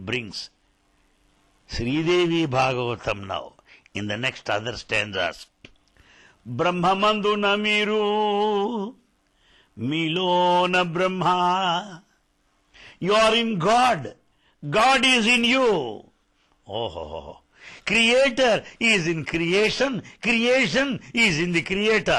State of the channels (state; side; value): identical; both; correlation 1.00